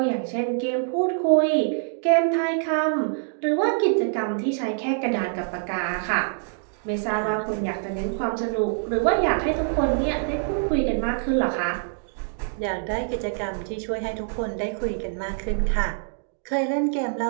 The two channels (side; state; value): left; silent; digital silence